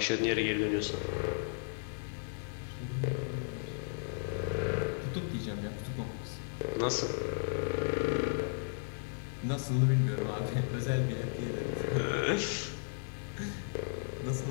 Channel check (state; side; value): silent; right; 55 dB below the other